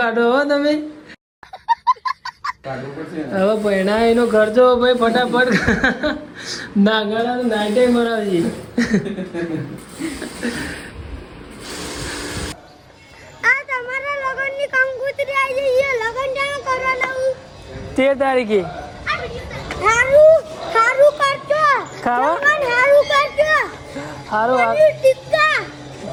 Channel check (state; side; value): identical; both; correlation 1.00